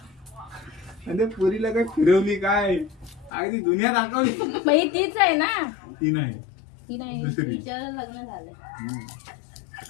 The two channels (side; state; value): right; drops out; at 3.3 s